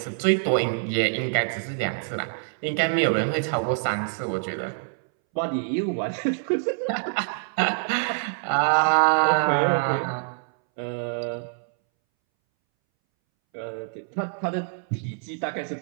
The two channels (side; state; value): left; silent; 61 dB below the other